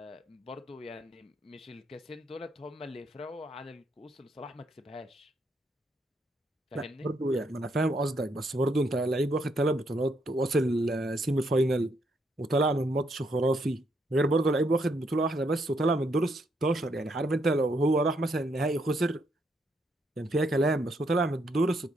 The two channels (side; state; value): both; normal; correlation 0.75